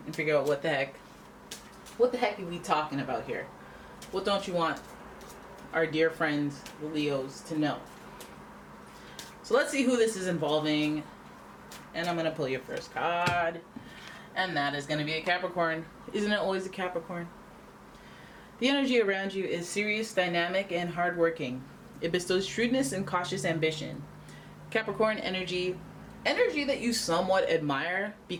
and figure out what the heck are we talking about here. What don't you want our dear friends, the Leos, to know? So let's see who this is involving. And I'm going to pull your first card. And that is going to be a Capricorn. Isn't it always a Capricorn? The energy around you is serious, dynamic, and hardworking. It bestows shrewdness and cautious ambition. Capricorn energy that you somewhat admire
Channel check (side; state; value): both; identical; correlation 1.00